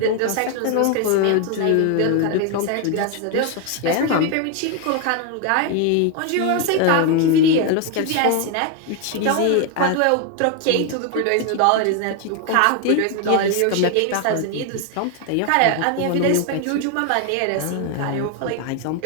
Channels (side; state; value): both; different; correlation 0.01